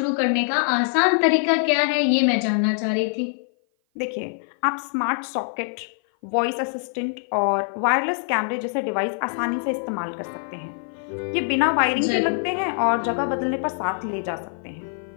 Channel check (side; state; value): right; silent; 56 dB below the other